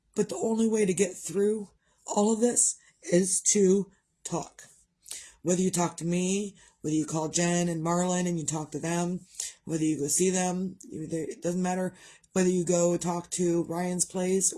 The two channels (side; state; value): both; identical; correlation 1.00